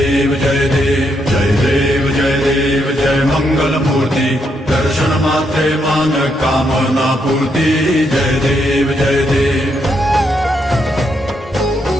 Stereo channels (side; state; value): both; normal; correlation 0.78